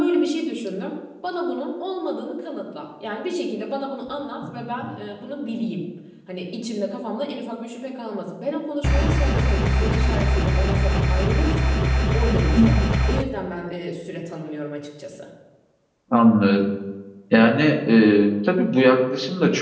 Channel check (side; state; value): both; identical; correlation 1.00